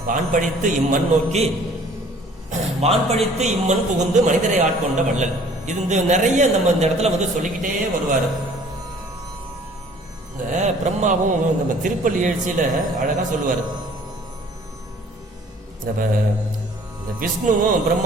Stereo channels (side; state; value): both; normal; correlation 0.54